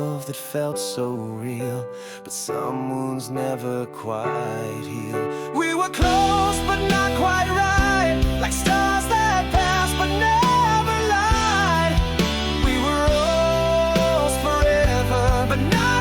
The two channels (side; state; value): both; identical; correlation 1.00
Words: that felt so real, but some wounds never quite heal. We were close but not quite right, like stars that pass but never lied. We were almost forever, but